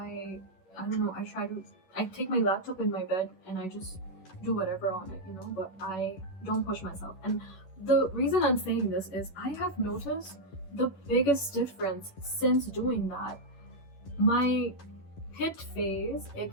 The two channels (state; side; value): late; right; 11 ms